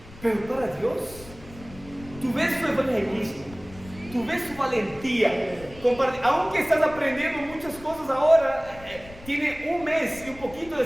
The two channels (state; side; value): noise; left; rumble, 18 dB below the sound